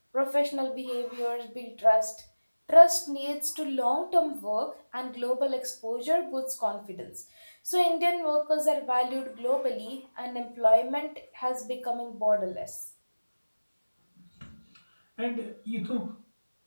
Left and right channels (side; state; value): both; inverted; correlation -1.00